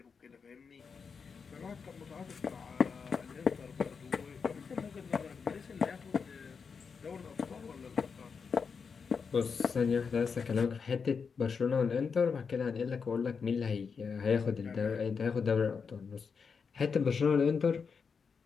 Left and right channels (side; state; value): right; quieter; 5.7 dB